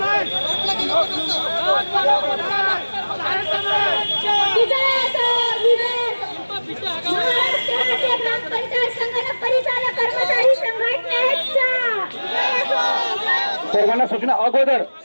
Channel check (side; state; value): both; inverted; correlation -1.00